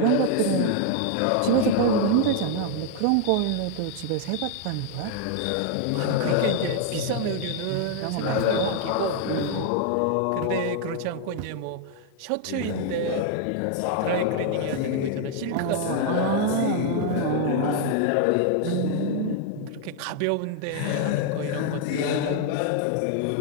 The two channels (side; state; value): both; different; correlation 0.00